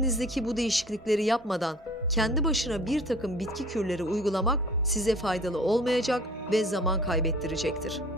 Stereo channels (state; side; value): normal; both; correlation 0.48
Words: bu değişiklikleri yapmadan kendi başına bir takım bitki kürleri uygulamak size faydalı olmayacak ve zaman kaybettirecektir.